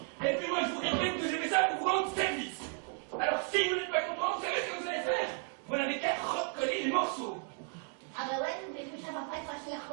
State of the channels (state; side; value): quieter; left; 38.3 dB